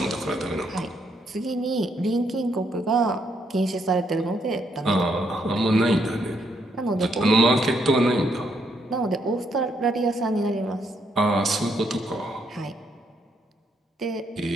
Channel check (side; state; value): both; normal; correlation 0.74